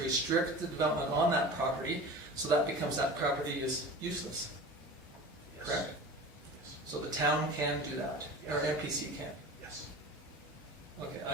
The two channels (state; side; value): normal; both; correlation 0.35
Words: restrict the development on that property, so that property is useless, Yes. correct? Yes. So the town can do that, or MPC can. Yes. Okay,